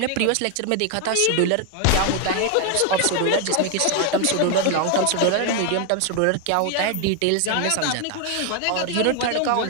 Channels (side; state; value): both; different; correlation 0.01